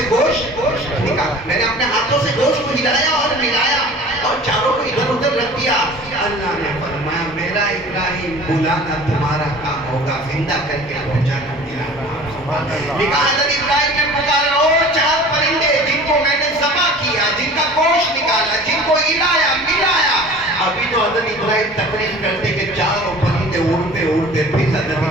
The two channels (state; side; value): normal; both; correlation 0.43